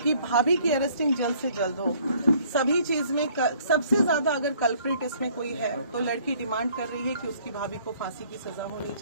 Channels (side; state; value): both; inverted; correlation -0.59